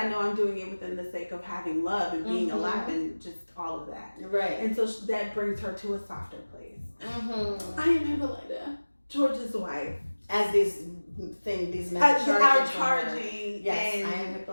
know I'm doing it within the sake of having love and being alive and just all of that. Right. And so that brings her to a softer place. I am Hippolyta, George's wife. As these men are charging. Yes, and I am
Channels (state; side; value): inverted; both; correlation -1.00